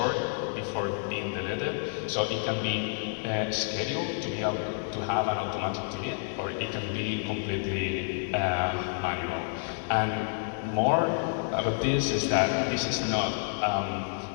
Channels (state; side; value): silent; right; digital silence